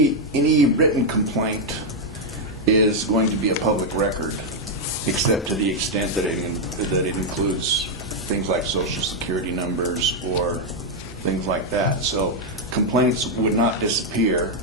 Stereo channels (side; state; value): both; normal; correlation 0.00